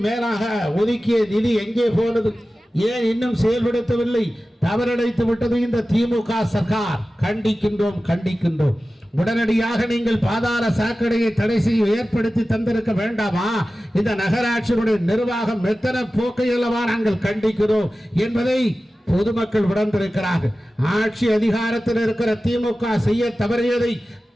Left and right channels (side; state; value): both; normal; correlation 0.95